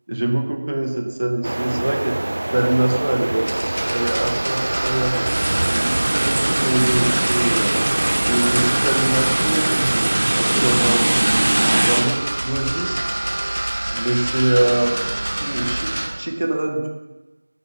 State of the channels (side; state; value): both; inverted; correlation -1.00